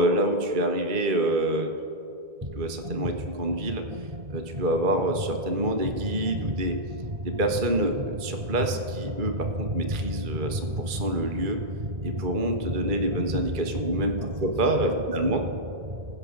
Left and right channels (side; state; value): left; late; 2.3 ms